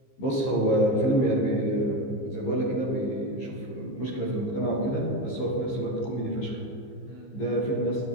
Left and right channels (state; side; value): late; right; 15 ms